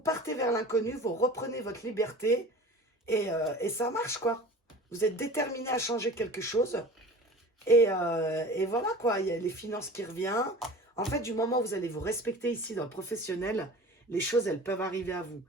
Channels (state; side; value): normal; both; correlation 0.39